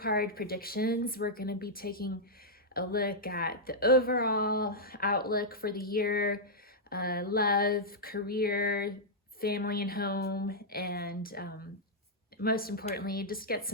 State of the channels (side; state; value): both; normal; correlation -0.08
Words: predictions. We're going to be taking a look at the overall outlook for the year, love, career, family and home, and most importantly, just get